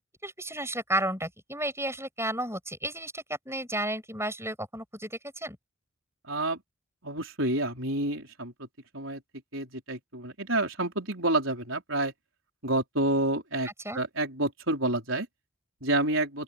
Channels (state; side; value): normal; both; correlation -0.02